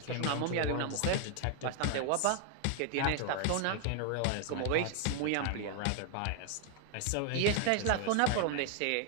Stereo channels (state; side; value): different; both; correlation 0.00